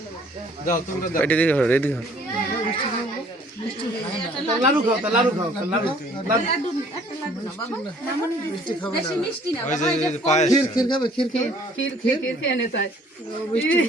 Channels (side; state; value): both; normal; correlation 0.58